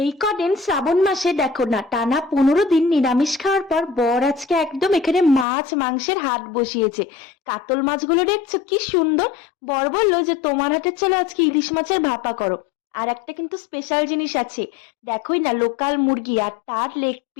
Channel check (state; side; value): drops out; right; at 5.5 s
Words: কদিন শ্রাবণ মাসে দেখো না, টানা 15 দিন নিরামিষ খাওয়ার পর বর আজকে একদম এখানে মাছ মাংসের হাট বসিয়েছে। কাতল মাছগুলো দেখছো কি সুন্দর। বর বললো যে তোমার হাতে চলো আজকে ইলিশ মাছের ভাপা করো। আর একটা কিন্তু স্পেশাল জিনিস আছে, দেখোই না, লোকাল মুরগি আর তার লেগ